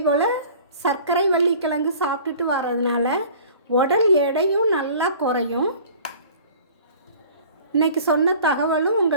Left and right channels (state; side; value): inverted; both; correlation -0.46